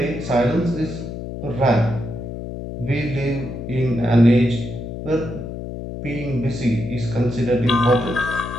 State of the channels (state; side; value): noise; left; hum, 8 dB below the sound